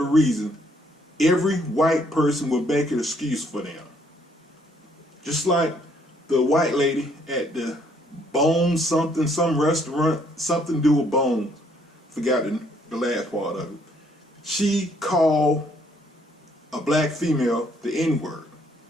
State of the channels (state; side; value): normal; both; correlation 0.67